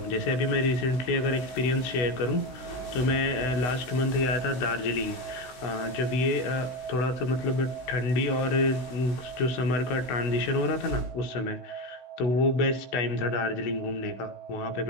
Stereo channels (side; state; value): right; late; 16 ms